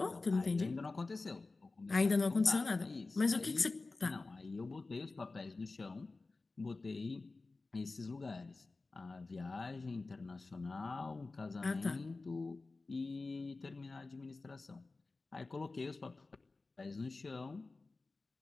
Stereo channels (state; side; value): quieter; right; 3.6 dB